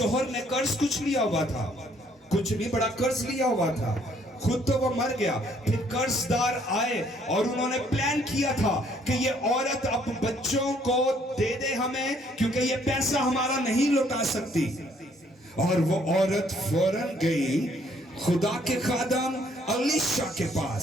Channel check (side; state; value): both; normal; correlation 0.65